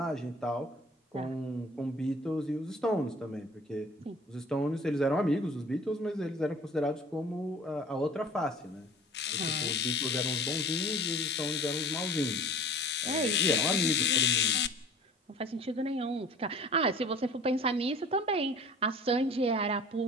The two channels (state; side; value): normal; both; correlation 0.45